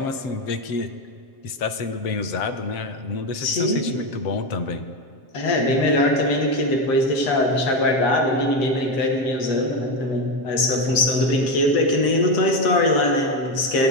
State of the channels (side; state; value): right; late; 7.6 ms